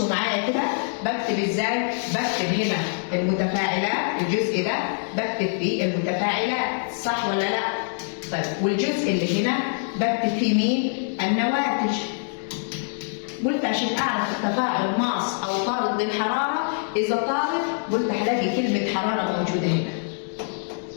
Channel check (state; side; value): silent; right; digital silence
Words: معايا كده. بكتب ازاي؟ بكتب هنا المتفاعلات، الجزء ده بكتب فيه المتفاعلات، صح ولا لا؟ طيب والجزء اللي هنا بكتب فيه مين؟ النواتج. قلت عشان اعرف التفاعل ماس او طارد للحراره، اذا طارد قلت هلاقي كلمه حراره موجوده هنا.